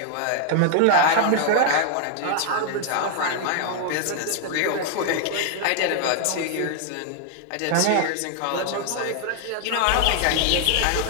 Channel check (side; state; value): both; different; correlation 0.00